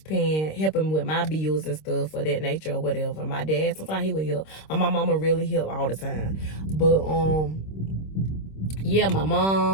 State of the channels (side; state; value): right; late; 26 ms